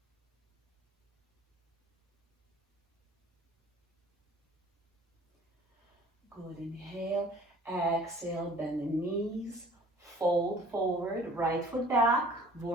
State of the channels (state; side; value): normal; both; correlation 0.50